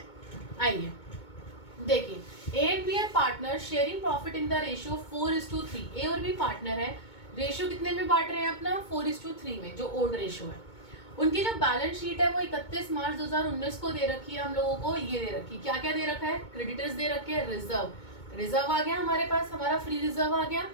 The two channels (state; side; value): late; right; 2.2 ms